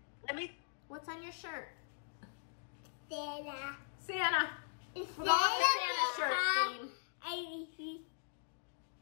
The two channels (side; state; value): right; silent; digital silence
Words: Let me. What's on your shirt? Santa. Santa. We're going with Santa shirt theme.